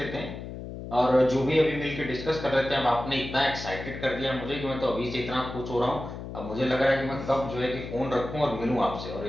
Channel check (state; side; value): noise; left; hum, 9 dB below the sound